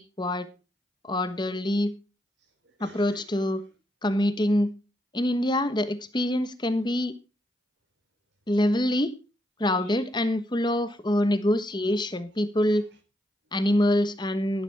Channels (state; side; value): normal; both; correlation 0.79